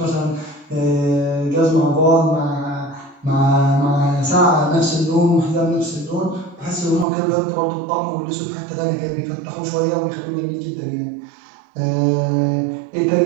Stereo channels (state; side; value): drops out; left; at 7.1 s